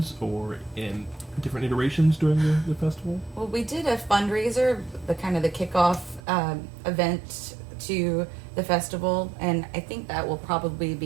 or in different iterations during the festival? Well, we did a fundraiser, the kickoff event to the festival, and I think that will probably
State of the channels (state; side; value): drops out; left; at 6.2 s